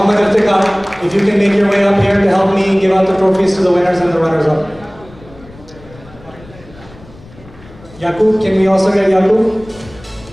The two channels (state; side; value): noise; left; rumble, 22 dB below the sound